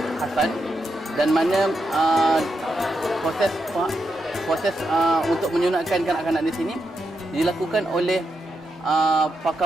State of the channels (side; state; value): both; normal; correlation 0.84